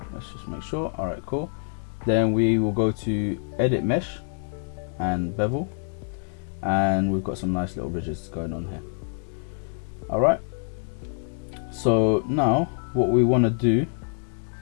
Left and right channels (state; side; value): silent; right; 56 dB below the other